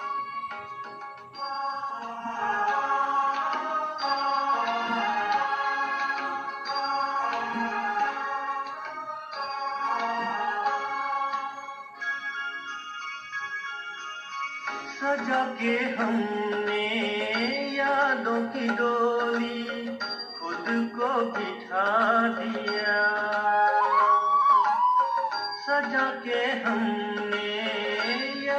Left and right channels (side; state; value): both; identical; correlation 1.00